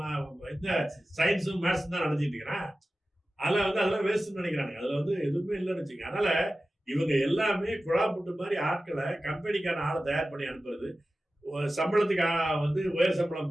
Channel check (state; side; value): normal; both; correlation 0.95